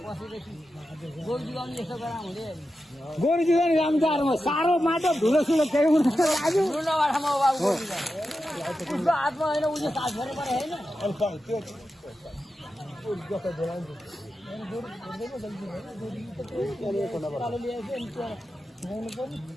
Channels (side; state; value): both; normal; correlation 0.90